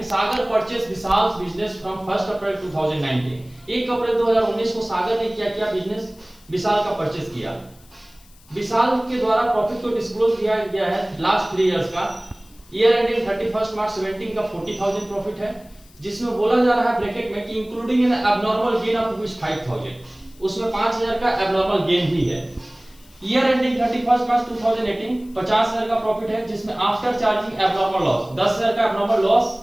सागर परचेस विशाल बिजनेस फ्रॉम 1 अप्रैल 2019। 1 अप्रैल 2019 को सागर ने क्या किया, बिजनेस विशाल का परचेस किया। विशाल के द्वारा प्रॉफिट को डिस्क्लोज किया गया है लास्ट 3 इयर्स का। ईयर एंडिंग 31 मार्च 17 का 40,000 प्रॉफिट है, जिसमें बोला जा रहा है ब्रैकेट में कि including N abnormal gain of ₹5,000, उसमें 5,000 का एबनॉर्मल गेन भी है। ईयर एंडिंग 31 मार्च 2018 50,000 का प्रॉफिट है, जिसमें आफ्टर चार्जिंग एबनॉर्मल लॉस 10,000 का एबनॉर्मल लॉस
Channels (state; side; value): noise; left; hiss, 27 dB below the sound